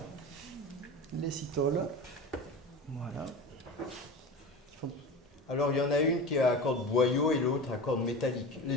Les citoles. Voilà. Alors il y en a une qui est à corde boyau et l'autre à corde métallique. Les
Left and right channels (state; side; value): normal; both; correlation 0.30